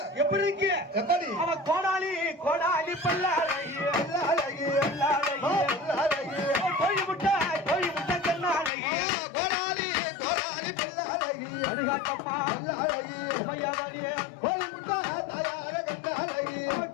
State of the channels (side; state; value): right; drops out; at 8.7 s